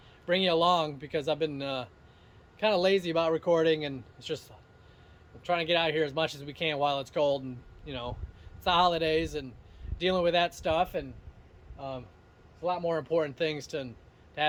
bring you along, because I've been kind of lazy about recording, and it's just I'm trying to get out here as much as we can while it's cold, and you know, it's the holidays and dealing with that stuff, and it's a lot more important things to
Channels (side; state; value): both; identical; correlation 1.00